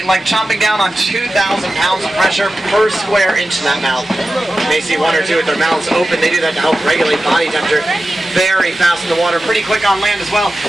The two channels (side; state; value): both; normal; correlation 0.94